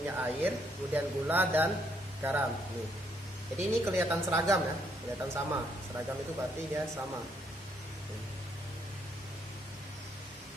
air, kemudian gula dan garam. Nih. Jadi ini kelihatan seragam ya, kelihatan sama. Seragam itu berarti dia sama.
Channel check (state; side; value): normal; both; correlation 0.72